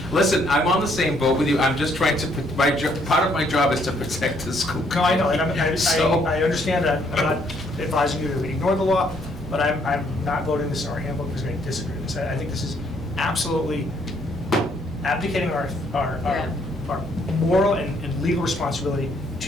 Listen, I'm on the same boat with you. I'm just trying to, part of my job is to protect the school. No, I know, and So- I understand that. I'm not advising you to ignore the law, but I'm not voting this in our handbook because I disagree with this. I think this is absolutely abdicating our moral and legal responsibility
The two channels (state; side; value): normal; both; correlation 0.68